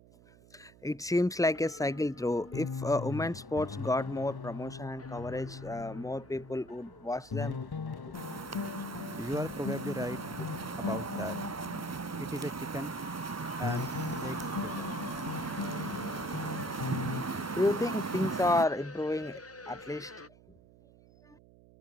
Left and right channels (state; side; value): noise; right; hum, 24 dB below the sound